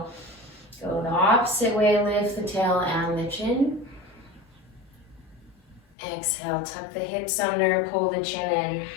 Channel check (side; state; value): right; drops out; at 6.0 s